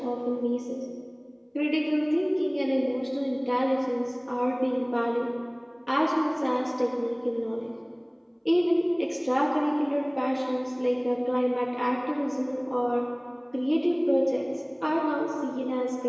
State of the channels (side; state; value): both; identical; correlation 1.00